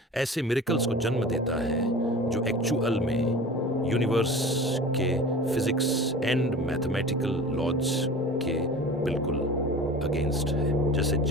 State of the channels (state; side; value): normal; both; correlation 0.38